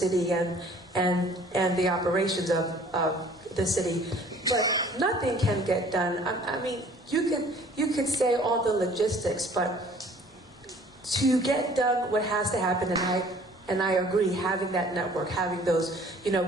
and the operations of the city, but nothing can get done. I mean, you could say all the logistics, but to get done what has to happen, and I agree, having that network, having those, you know,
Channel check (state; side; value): normal; both; correlation 0.53